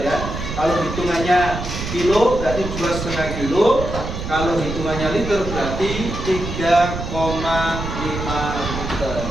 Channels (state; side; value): noise; right; rumble, 6 dB below the sound